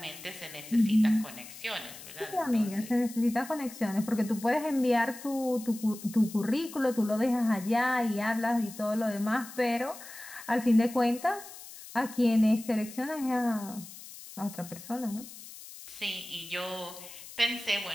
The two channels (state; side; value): noise; left; hiss, 15 dB below the sound